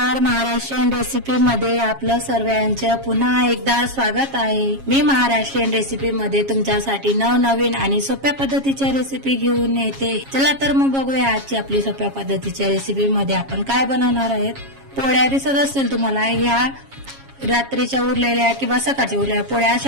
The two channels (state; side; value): late; left; 7.3 ms